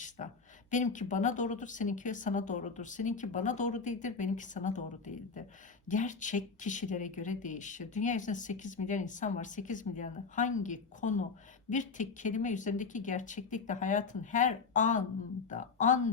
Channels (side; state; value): right; quieter; 4.9 dB